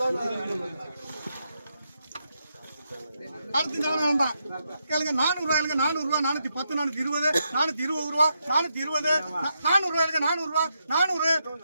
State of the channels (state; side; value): inverted; both; correlation -0.82